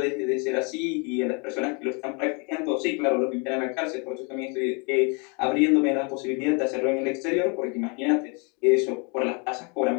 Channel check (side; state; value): right; quieter; 34.1 dB